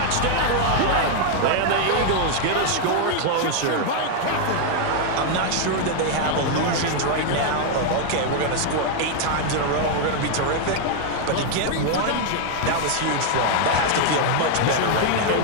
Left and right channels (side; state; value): both; different; correlation 0.00